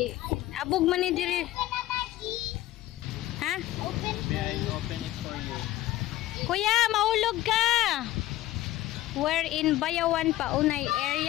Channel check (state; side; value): quieter; right; 15.5 dB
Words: abog man ni diri. Ha? Open it for you. Kuya, maulog ka. We're in Bayawan Paunay